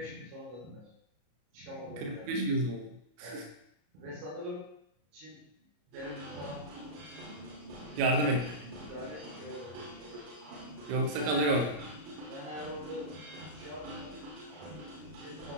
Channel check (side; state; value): left; late; 33 ms